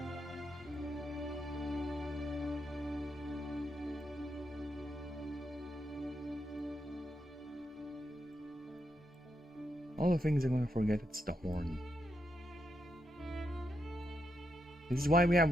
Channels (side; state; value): both; normal; correlation 0.82